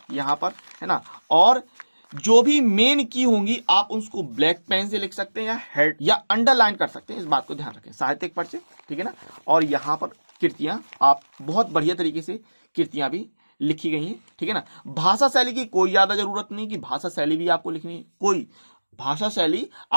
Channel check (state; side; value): inverted; both; correlation -1.00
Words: यहाँ पर, है ना। और जो भी मेन की होंगी आप उसको ब्लैक पेन से लिख सकते हैं या हेड या अंडरलाइन कर सकते हैं, इस बात को ध्यान रखें। साहित्यिक परिचय, ठीक है ना। और यहाँ पर कृतियां आप बहुत बढ़िया तरीके से कृतियां भी लिखी गई हैं, ठीक है ना। भाषा शैली की कोई ज्यादा जरूरत नहीं कि भाषा शैली भी आपको लिखनी है, कोई भाषा शैली